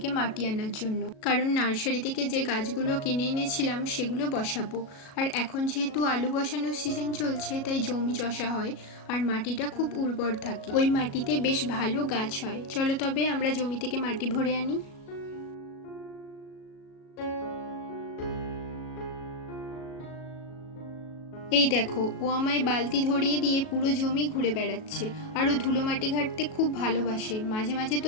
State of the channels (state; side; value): late; right; 37 ms